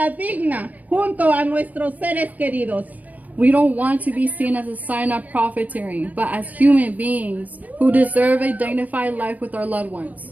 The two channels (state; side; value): late; left; 0.078 ms